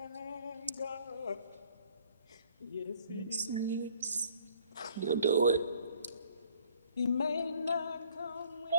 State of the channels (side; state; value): both; inverted; correlation -0.60